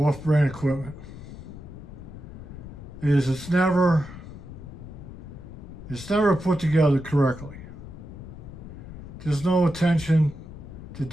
equipment is it's never put together correctly. There's no attention to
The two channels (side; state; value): left; noise; rumble, 13 dB below the sound